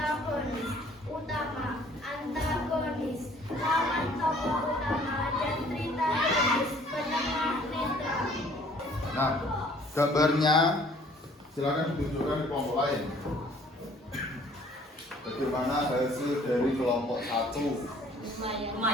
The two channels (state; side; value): normal; both; correlation 0.57